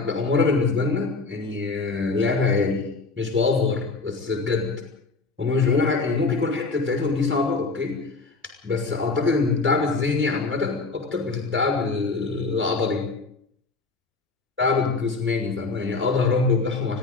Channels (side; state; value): right; quieter; 3.9 dB